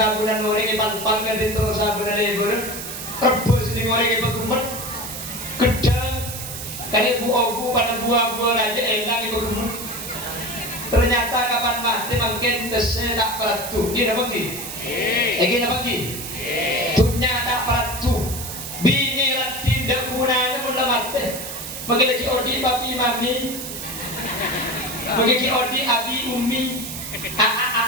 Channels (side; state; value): right; noise; hiss, 8 dB below the sound